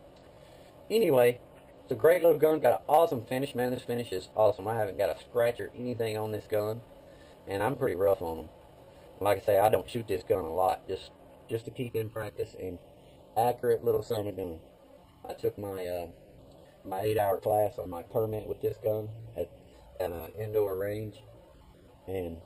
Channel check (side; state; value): both; identical; correlation 1.00